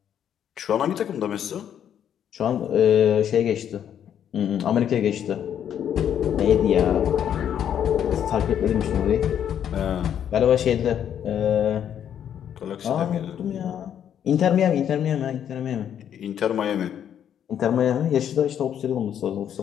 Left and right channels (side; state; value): right; quieter; 9.4 dB